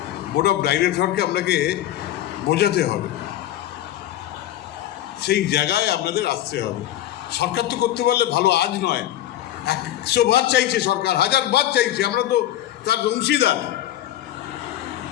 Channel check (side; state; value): right; quieter; 13.2 dB